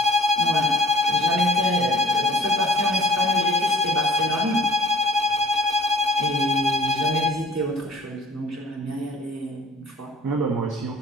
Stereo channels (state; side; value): normal; both; correlation 0.51